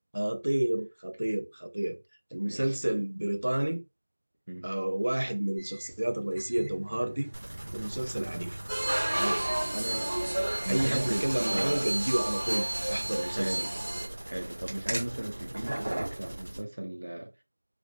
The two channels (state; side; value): inverted; both; correlation -1.00